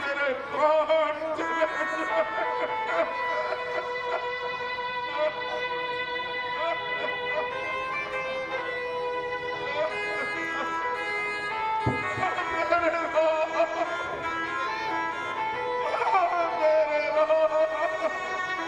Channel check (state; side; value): noise; right; hum, 27 dB below the sound